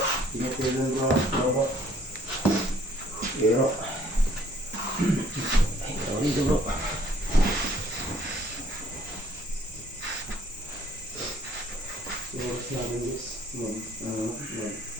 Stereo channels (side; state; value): both; normal; correlation 0.60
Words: Ingat kayo dun bro. Pero ay, tawag dito bro. Oras namin guys.